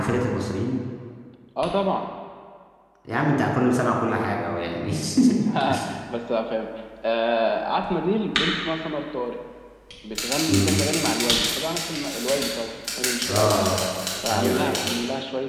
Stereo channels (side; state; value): both; identical; correlation 1.00